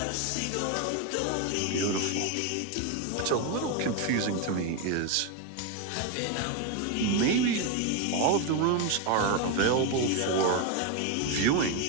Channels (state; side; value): different; both; correlation 0.02